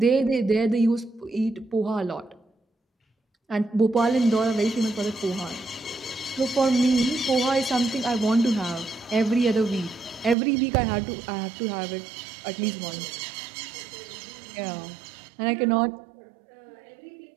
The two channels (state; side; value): drops out; left; at 10.4 s